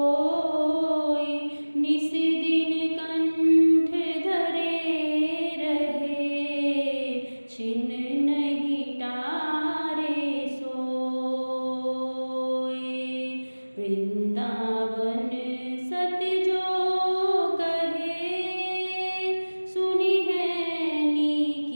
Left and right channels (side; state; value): both; inverted; correlation -1.00